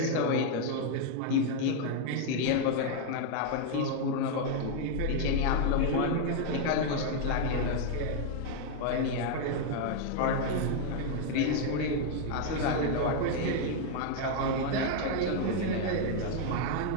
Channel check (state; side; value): different; both; correlation 0.00